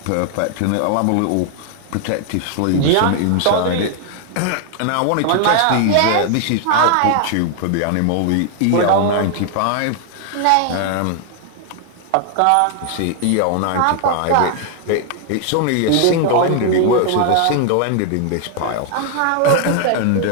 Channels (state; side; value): different; both; correlation 0.00